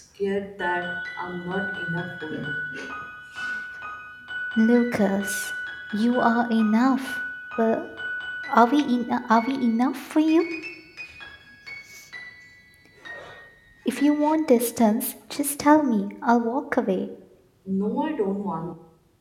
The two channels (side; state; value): both; identical; correlation 1.00